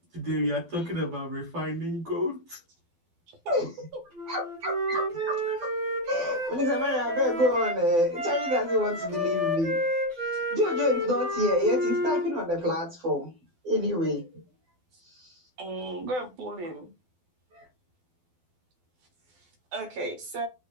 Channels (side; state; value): left; late; 12 ms